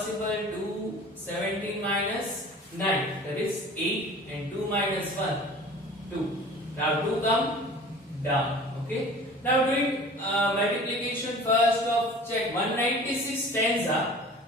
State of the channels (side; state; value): both; normal; correlation 0.43